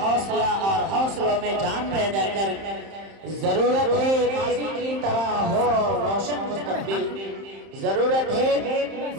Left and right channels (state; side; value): late; left; 31 ms